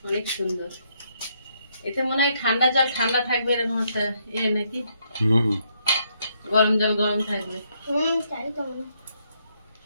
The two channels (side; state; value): both; inverted; correlation -0.74